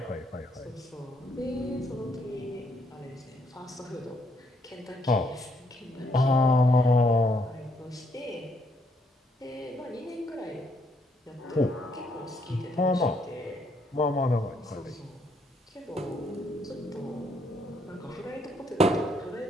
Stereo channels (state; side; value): normal; both; correlation 0.71